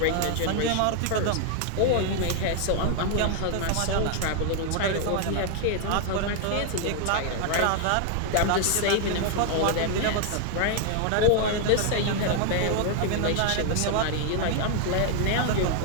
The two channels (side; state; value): both; different; correlation 0.00